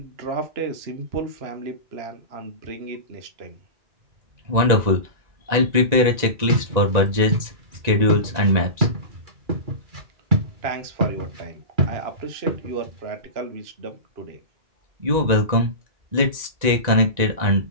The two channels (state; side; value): late; left; 1.9 ms